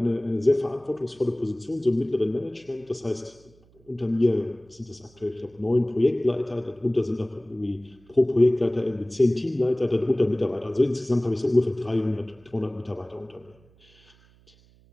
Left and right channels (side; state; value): right; noise; hum, 29 dB below the sound